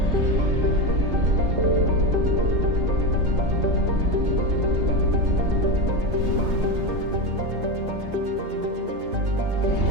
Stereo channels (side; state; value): left; late; 3.2 ms